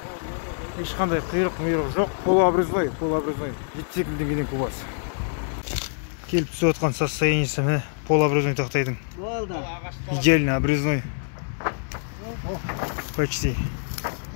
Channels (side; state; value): right; silent; digital silence